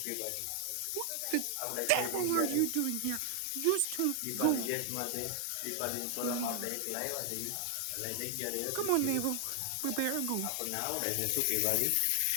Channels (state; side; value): different; both; correlation 0.00